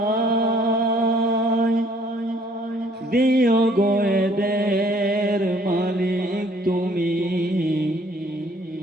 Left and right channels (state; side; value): normal; both; correlation 0.60